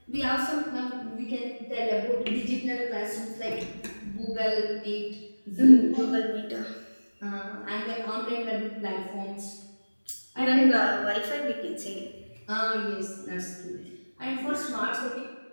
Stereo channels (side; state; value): both; inverted; correlation -1.00